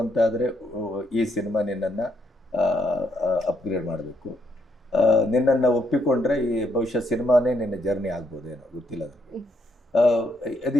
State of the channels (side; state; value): both; normal; correlation 0.74